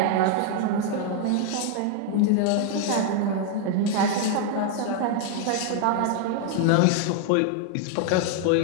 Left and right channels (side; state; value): both; different; correlation 0.00